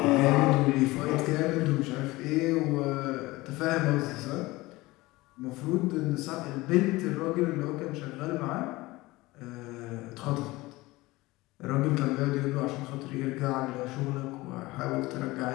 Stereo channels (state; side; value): quieter; right; 20.3 dB